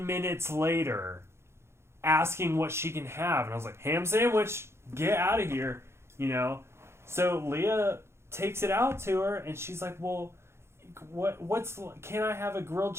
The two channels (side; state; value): left; late; 0.12 ms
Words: minutes later, asking what she can have. And I was like, ham sandwich, get out of here, So Leah takes it out to her, and she's like, well, can I have a grilled